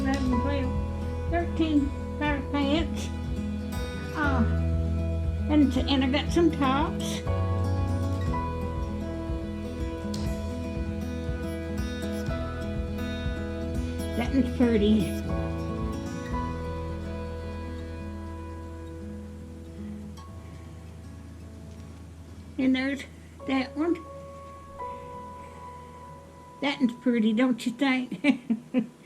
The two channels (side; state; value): both; identical; correlation 1.00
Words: 12, 13 pair of pants. And I got some tops. That one's pretty. And there's that one. That one's pretty, don't you think?